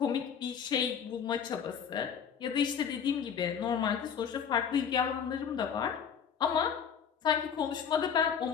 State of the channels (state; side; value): quieter; right; 7.5 dB